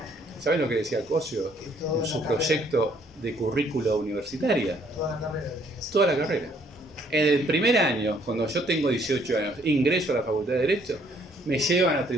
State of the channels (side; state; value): both; normal; correlation 0.64